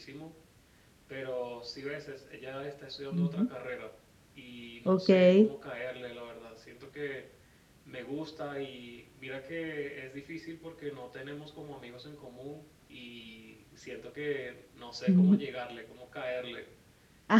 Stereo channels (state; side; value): identical; both; correlation 1.00